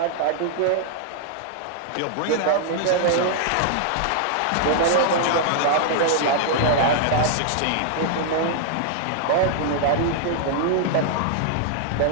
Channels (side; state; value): both; different; correlation -0.01